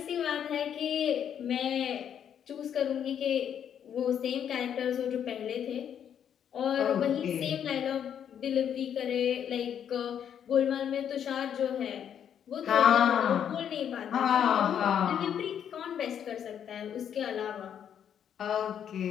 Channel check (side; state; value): right; quieter; 8.9 dB